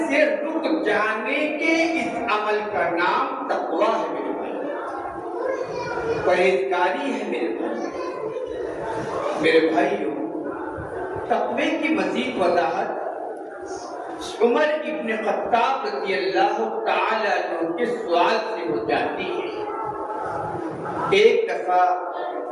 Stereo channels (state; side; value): identical; both; correlation 1.00